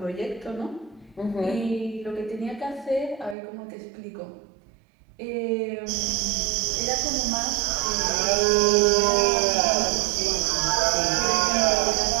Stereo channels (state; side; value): drops out; left; at 3.4 s